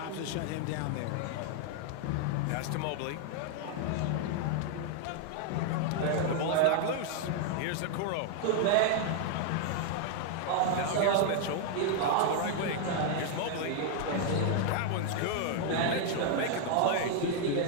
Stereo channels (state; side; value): different; both; correlation 0.00